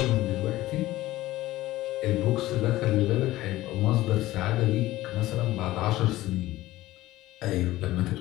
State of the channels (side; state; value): right; quieter; 16.6 dB